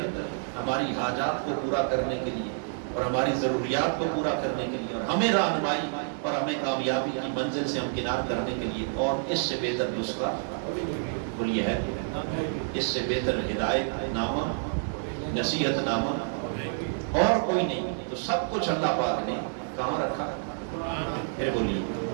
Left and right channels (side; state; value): left; silent; 59 dB below the other